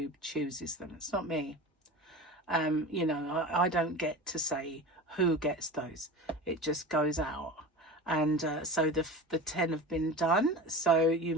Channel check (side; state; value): both; normal; correlation 0.31